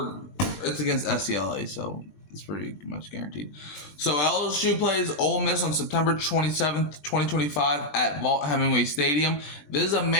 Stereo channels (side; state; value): right; late; 20 ms